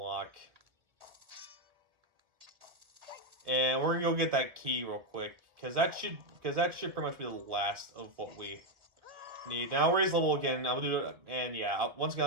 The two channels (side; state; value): left; late; 1.9 ms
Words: and we're gonna go get that key real quick because that should pretty much be the last of what we need. Now we'll raise level again. I'll do it, and yeah, once again,